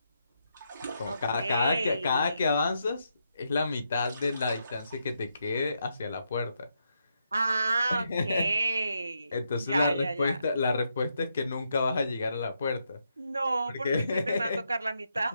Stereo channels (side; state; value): both; inverted; correlation -0.81